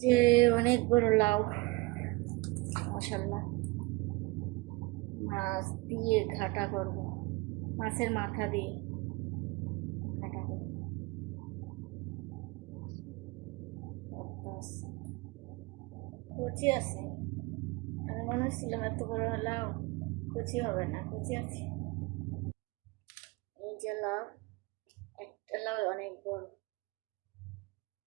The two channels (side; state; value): left; quieter; 23.7 dB